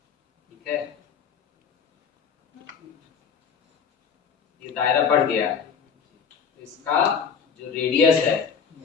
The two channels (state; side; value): quieter; right; 6.5 dB